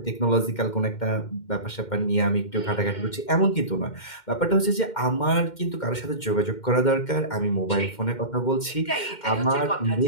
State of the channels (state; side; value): late; right; 2.1 ms